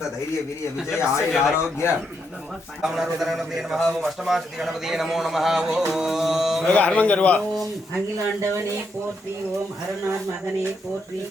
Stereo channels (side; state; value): both; normal; correlation 0.79